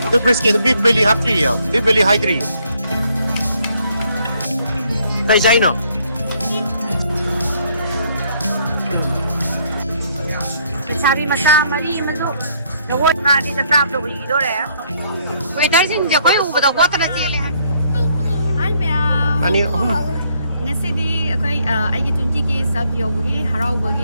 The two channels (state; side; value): inverted; both; correlation -0.68